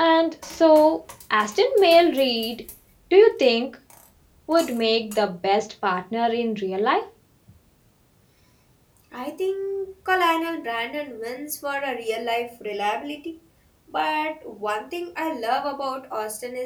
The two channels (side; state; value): both; identical; correlation 1.00